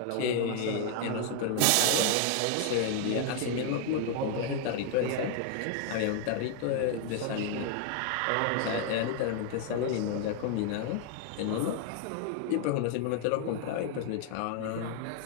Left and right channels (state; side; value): different; both; correlation 0.00